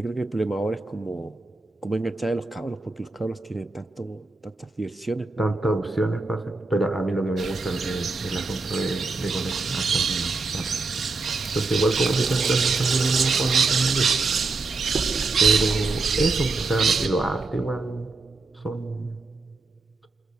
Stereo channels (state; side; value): quieter; left; 3.7 dB